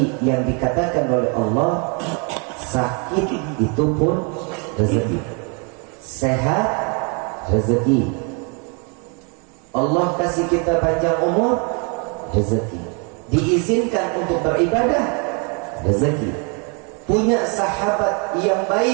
yang dikatakan oleh Allah, sakit itu pun rezeki, sehat rezeki, Allah kasih kita panjang umur rezeki, diizinkan untuk beribadah rezeki, punya sahabat yang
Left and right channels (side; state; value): left; quieter; 35.6 dB